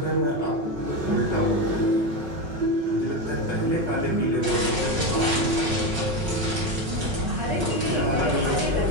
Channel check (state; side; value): late; left; 5.4 ms